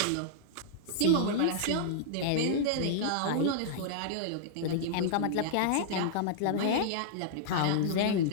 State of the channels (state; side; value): different; both; correlation -0.02